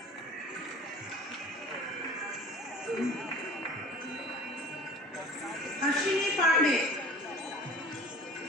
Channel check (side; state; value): both; normal; correlation 0.42